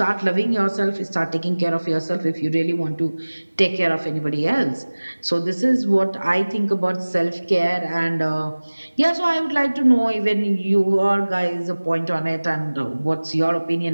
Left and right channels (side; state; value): both; inverted; correlation -1.00